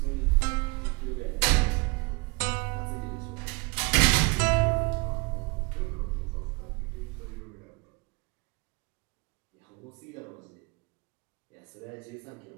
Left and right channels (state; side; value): quieter; left; 28.4 dB